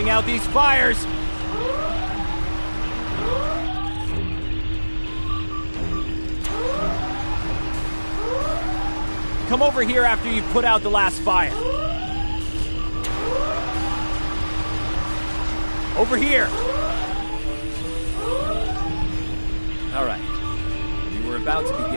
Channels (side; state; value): both; inverted; correlation -1.00